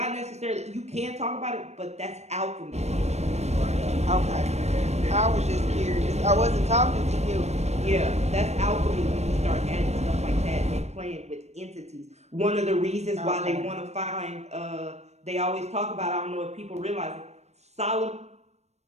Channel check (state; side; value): late; left; 0.32 ms